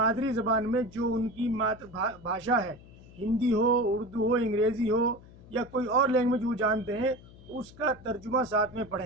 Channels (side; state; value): left; noise; hum, 21 dB below the sound